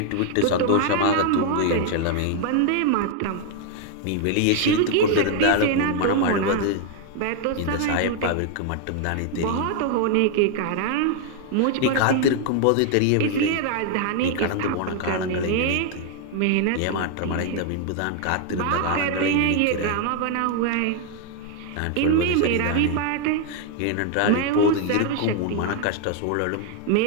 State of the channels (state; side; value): different; both; correlation 0.00